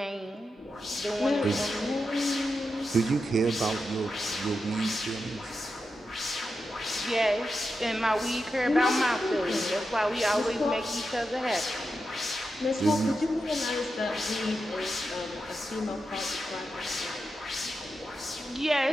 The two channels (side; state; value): both; normal; correlation 0.88